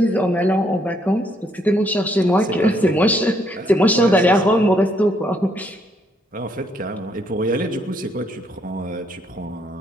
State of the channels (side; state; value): both; normal; correlation 0.71